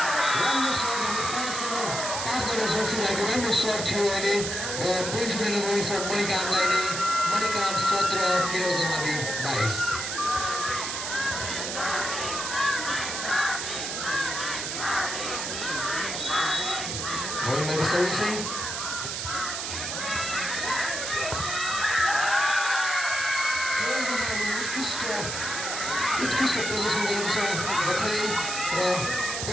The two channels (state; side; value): noise; right; hiss, 3 dB below the sound